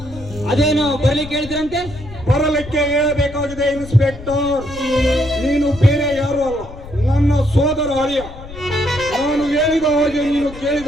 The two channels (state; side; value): noise; left; rumble, 15 dB below the sound